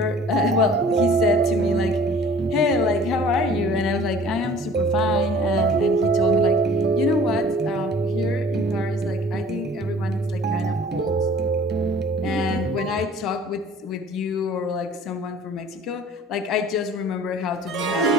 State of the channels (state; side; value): normal; both; correlation 0.49